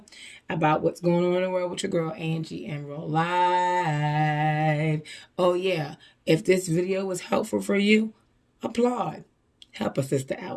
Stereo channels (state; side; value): identical; both; correlation 1.00